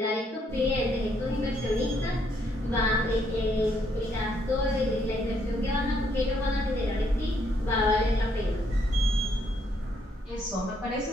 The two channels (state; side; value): normal; both; correlation 0.72